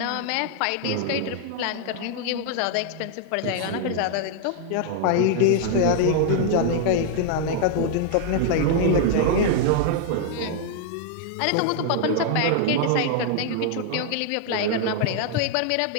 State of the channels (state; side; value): different; both; correlation 0.00